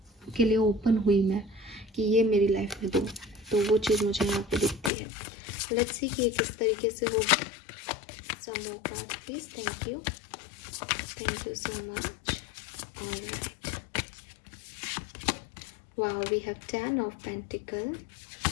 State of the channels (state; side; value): drops out; right; at 4.9 s